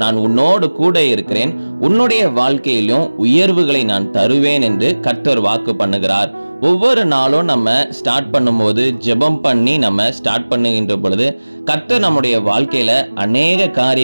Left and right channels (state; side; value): inverted; both; correlation -1.00